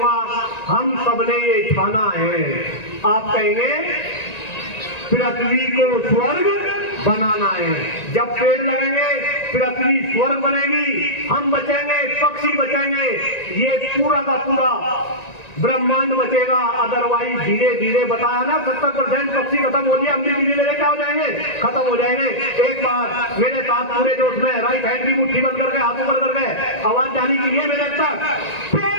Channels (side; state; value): right; late; 1.9 ms